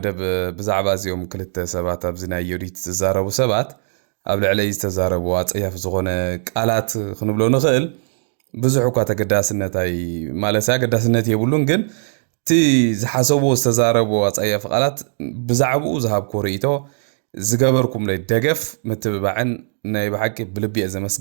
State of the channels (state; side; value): silent; left; digital silence